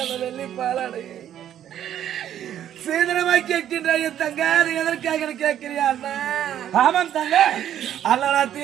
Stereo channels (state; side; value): quieter; left; 10.8 dB